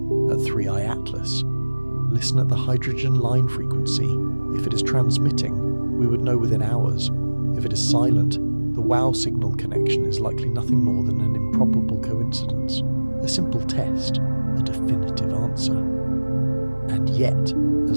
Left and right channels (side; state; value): both; inverted; correlation -1.00